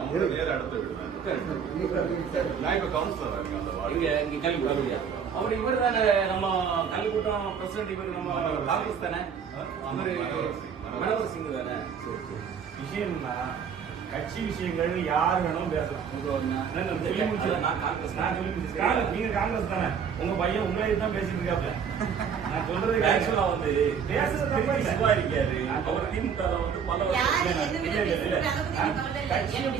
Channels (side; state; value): left; quieter; 7.0 dB